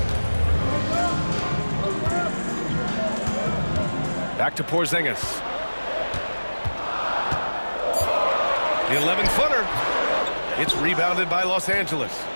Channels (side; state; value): both; inverted; correlation -1.00